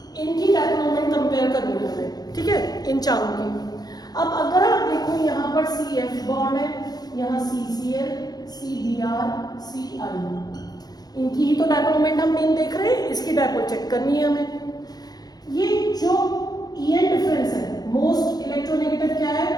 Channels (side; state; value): right; late; 0.19 ms